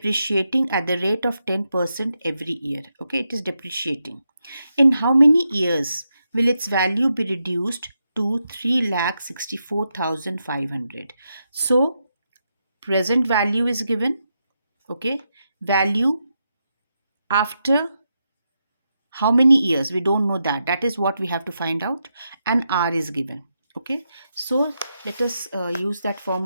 at the rate of 10% every year. Okay, it is depreciating. In how many years will its value be reduced to 3,64,500? So present value is given. Okay, value after how many years, we don't know that is what we have to find out, and r is given. Okay, so let us use that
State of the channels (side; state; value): both; inverted; correlation -0.85